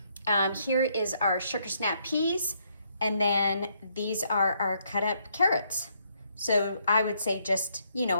Here is our sugar snap peas, and then these are our cut up carrots. So I would say just,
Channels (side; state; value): both; inverted; correlation -0.73